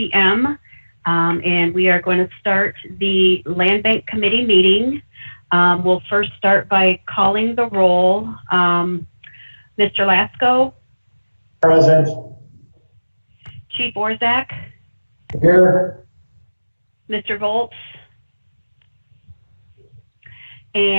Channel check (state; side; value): inverted; both; correlation -1.00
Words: And we are going to start the Land Bank Committee meeting. We'll first start by calling the roll. Mr. Lasco? Present. Chief Orzak? Here. Mr. Volz?